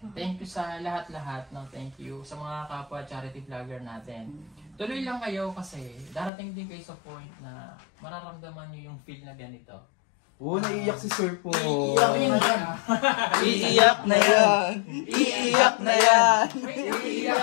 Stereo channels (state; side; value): drops out; right; at 6.3 s